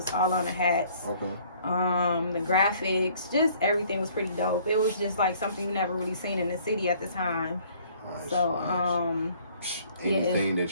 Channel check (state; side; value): inverted; both; correlation -0.58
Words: all on the hats. The graphics, just everything was pretty dope. It was just like something you never really seen in the city at the time. So anything